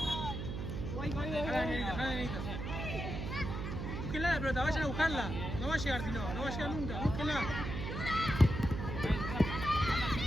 Búsquenla la pelota, vayan a buscarla. No va a llegar si no va a llegar nunca. Búsquenla.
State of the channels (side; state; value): right; noise; hum, 4 dB below the sound